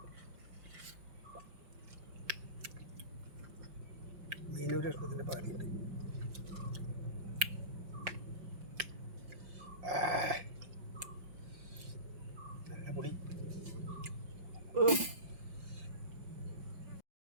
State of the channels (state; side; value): late; left; 5.6 ms